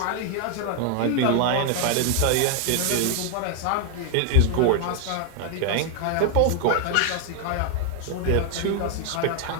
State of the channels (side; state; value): both; different; correlation 0.00